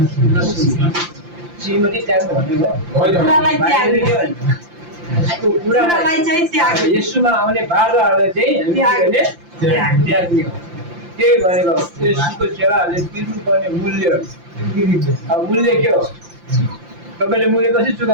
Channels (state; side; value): late; left; 5.8 ms